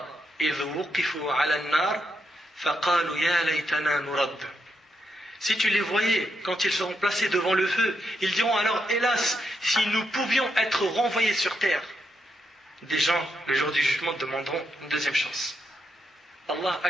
إِذْ وُقِفُوا عَلَى النَّارِ فَقَالُوا يَا لَيْتَنَا نُرَدُّ. Si tu les voyais quand ils seront placés devant le feu, ils diront alors, hélas, si nous pouvions être renvoyés sur terre. Des gens, le jour du jugement, demanderont une deuxième chance. Allah,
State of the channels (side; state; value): both; normal; correlation 0.82